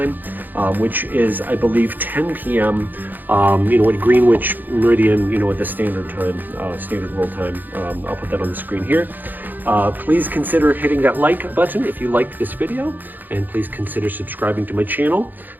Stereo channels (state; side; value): late; left; 0.087 ms